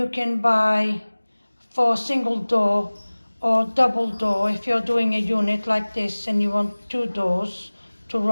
can buy for single door or double door. If you're doing a unit like this and you want 2 doors to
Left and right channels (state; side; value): inverted; both; correlation -1.00